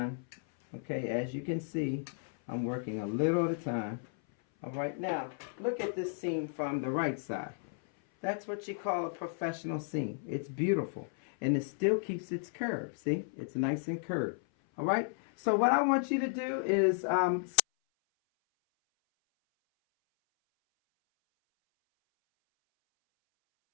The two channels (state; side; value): silent; right; 55 dB below the other